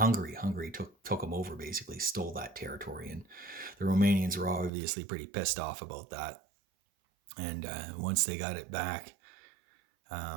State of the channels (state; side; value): drops out; left; at 4.7 s